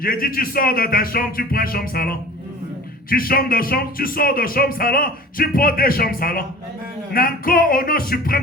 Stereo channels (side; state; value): both; normal; correlation 0.42